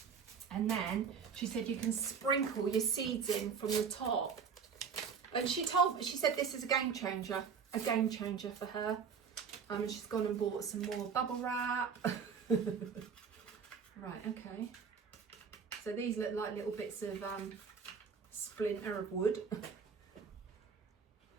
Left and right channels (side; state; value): left; quieter; 6.3 dB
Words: And then she said you can sprinkle your seeds in from the top. And she said this is a game changer for her. And she's gone and bought some more bubble wrap. Right, okay. So these look like little bits of splinter of wood.